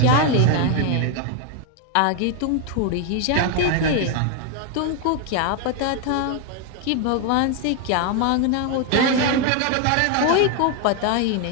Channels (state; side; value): different; both; correlation 0.01